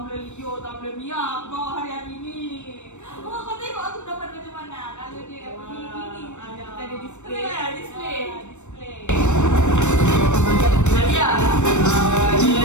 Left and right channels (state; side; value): late; right; 0.84 ms